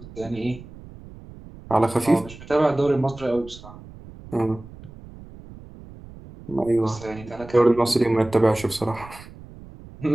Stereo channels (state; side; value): noise; right; rumble, 18 dB below the sound